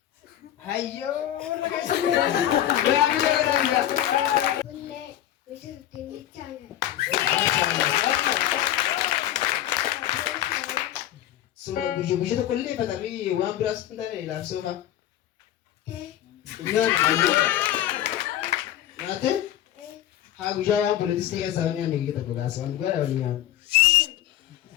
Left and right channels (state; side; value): quieter; right; 12.4 dB